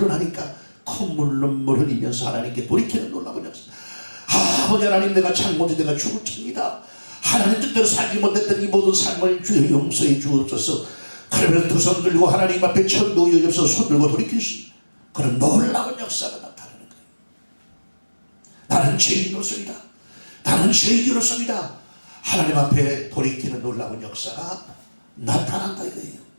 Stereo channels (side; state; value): both; inverted; correlation -1.00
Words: 콧물 눈물 흘리면서 하나님께 돌이키는 놀라운 역사. 아버지 하나님, 내가 잘못해 내가 죽을 칩니다. 하나님 뜻대로 살지 못했던 이 모든 삶을 주여 용서해 주옵소서. 그러면 두 손 들고 하나님 앞에 천도 여접서 손 들고 돌이킬 수 있는 그런 놀라운 역사가 나타나는 거예요. 나는 죄인으로서이다. 나는 죄인으로서이다. 하나님 앞에 돌이키는 놀라운 역사가 나타난다 이거예요.